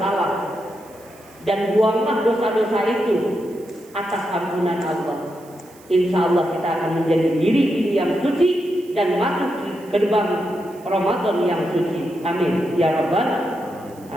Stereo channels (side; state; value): right; noise; hiss, 26 dB below the sound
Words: dan buanglah dosa-dosa itu atas ampunan Allah. Insya Allah kita akan menjadi diri yang suci dan masuk ke gerbang Ramadan yang suci. Amin ya rabbal